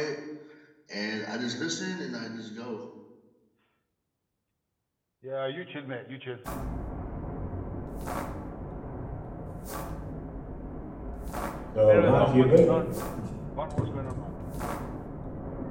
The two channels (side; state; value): both; identical; correlation 1.00